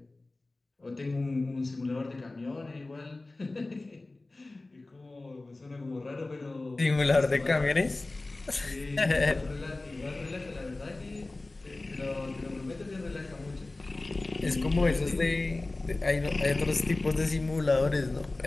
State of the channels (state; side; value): quieter; right; 3.1 dB